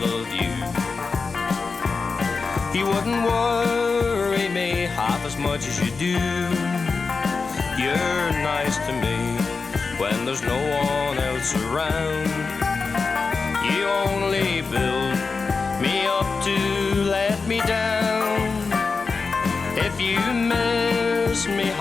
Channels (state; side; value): quieter; right; 4.6 dB